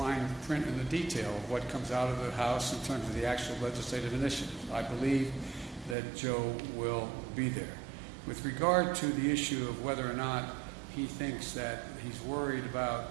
print and the detail of what comes out of the House in terms of the actual legislative initiatives. I believe that Joe will be there. With regard to the issue of whether or not he thinks that he's worried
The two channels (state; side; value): drops out; left; at 6.0 s